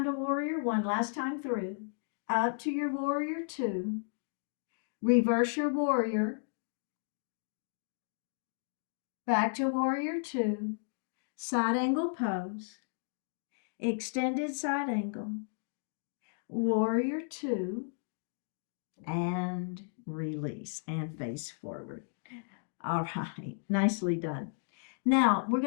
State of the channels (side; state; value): right; silent; digital silence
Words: to warrior one. Last time through. Up to your warrior two. Reverse your warrior. Back to warrior two. Side angle pose. Extended side angle. Warrior two. And release and face forward. All right, nicely done. Now we're